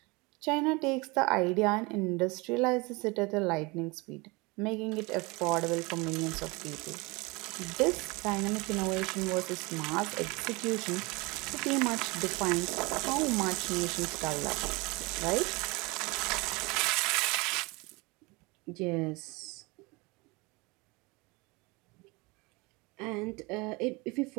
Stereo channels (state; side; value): quieter; left; 25.9 dB